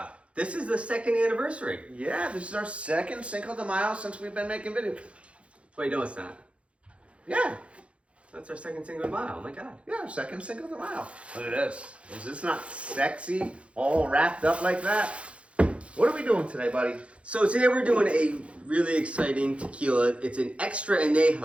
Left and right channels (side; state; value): left; late; 0.061 ms